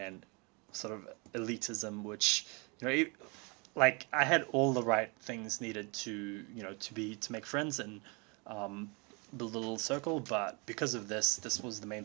sort of elitism, which like I had all the right things needed to make friends and um, build a little circle, but because of this was the main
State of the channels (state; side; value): quieter; left; 30.9 dB